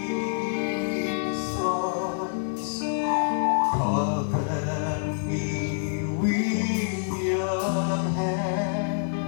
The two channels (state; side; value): silent; right; 60 dB below the other